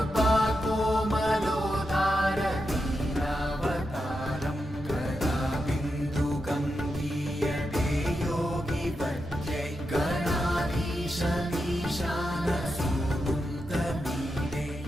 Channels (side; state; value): both; normal; correlation 0.87